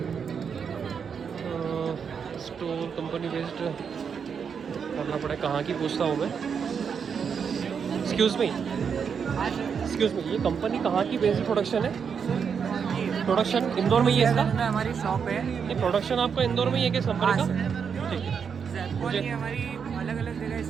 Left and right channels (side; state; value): left; quieter; 6.7 dB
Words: स्टोर कंपनी बेस्ड करना पड़े, कहाँ की पूछता हूँ मैं। एक्सक्यूज़ मी, ये कंपनी कहाँ की बेस्ड प्रोडक्शन है? प्रोडक्शन इंदौर में ही है इसका? हमारी शॉप है। ये प्रोडक्शन आपका इंदौर में ही है किस कंपनी का? ठीक है, मुझे हमारी अलग अलग जगह